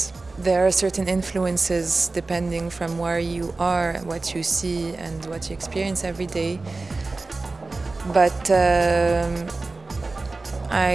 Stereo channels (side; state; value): left; quieter; 3.5 dB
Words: there are certain influences depending from where you are, what you see and what you experience every day. But